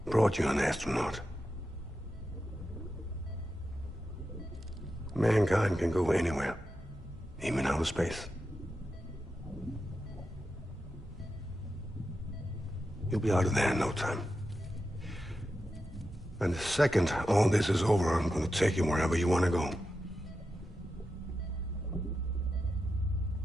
Brought you an astronaut. Mankind can go anywhere, even outer space. You'll be out of there in no time. And the second all this is over, I'm gonna take you wherever you want to go.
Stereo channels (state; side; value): normal; both; correlation 0.89